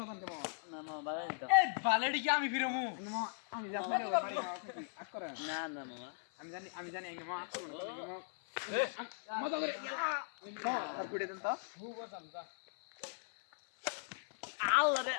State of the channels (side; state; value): right; silent; 52 dB below the other